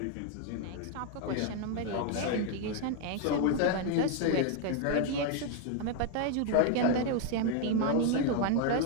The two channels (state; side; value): different; both; correlation 0.00